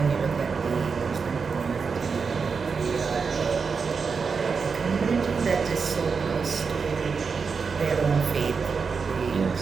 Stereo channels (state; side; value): quieter; left; 5.3 dB